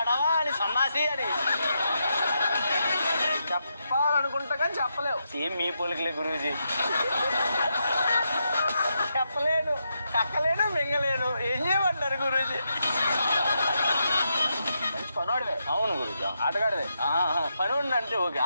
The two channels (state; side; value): inverted; both; correlation -0.83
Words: అని, సన్నాసి అని చెప్పాలనుకుంటా కానీ చెప్పలేవు. సేమ్ మీ పోలికలే గురూజీ. చెప్పలేను, కక్కలేను, మింగలేను. ఏం చేయమంటారు గురూజీ? మంచి పనోడివే. అవును గురూజీ. ఆటగాడివే. పనోడిని అంటే ఓకే,